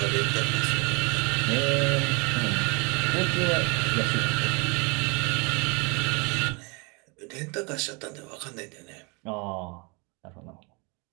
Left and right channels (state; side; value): quieter; left; 30.6 dB